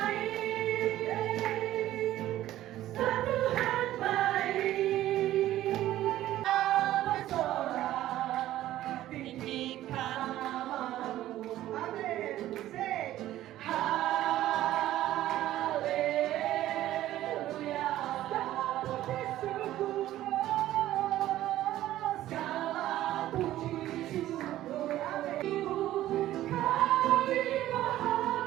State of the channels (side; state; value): left; quieter; 14.0 dB